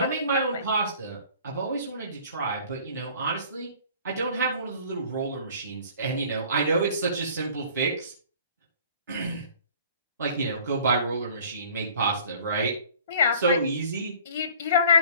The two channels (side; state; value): both; inverted; correlation -0.50